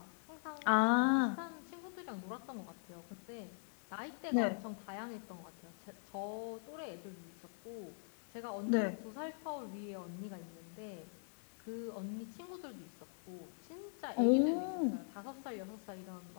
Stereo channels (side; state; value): right; silent; 50 dB below the other